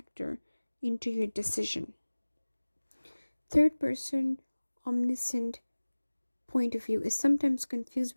into your decision. Third person omniscient point of view is sometimes confused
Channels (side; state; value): both; inverted; correlation -1.00